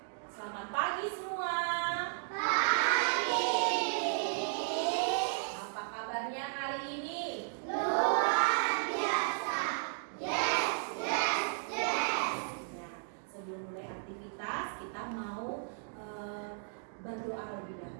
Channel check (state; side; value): silent; left; digital silence